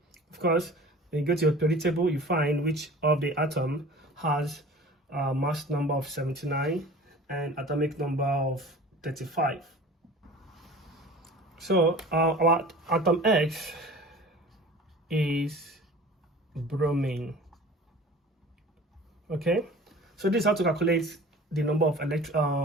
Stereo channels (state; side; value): normal; both; correlation 0.42